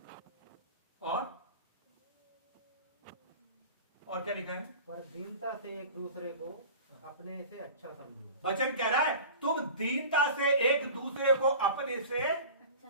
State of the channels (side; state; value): both; inverted; correlation -0.38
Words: और क्या लिखा है? पर दीनता से एक दूसरे को अपने से अच्छा समझो। वचन कह रहा है तुम दीनता से एक दूसरे को अपने से